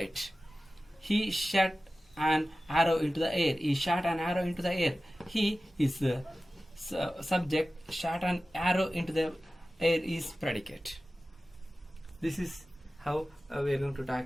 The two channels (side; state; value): both; normal; correlation 0.95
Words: He shot an arrow into the air. He shot an arrow into the air. He is subject, shot an arrow into the air is predicate. This is how we are going to